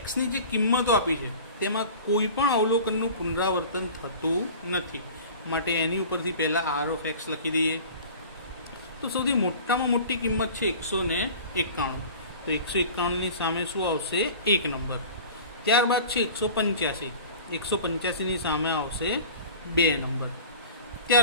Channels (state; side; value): inverted; both; correlation -0.40